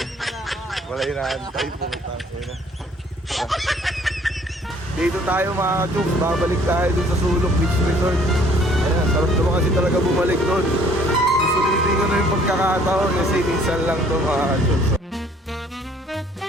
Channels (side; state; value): both; normal; correlation 0.58